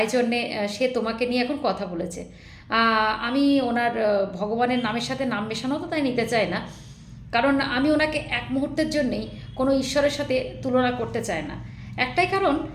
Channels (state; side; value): identical; both; correlation 1.00